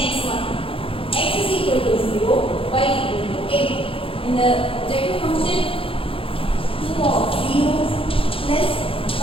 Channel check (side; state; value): right; late; 0.27 ms